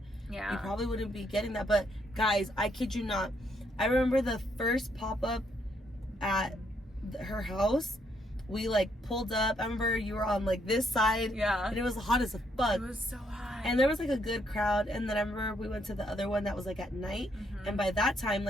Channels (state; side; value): normal; both; correlation 0.73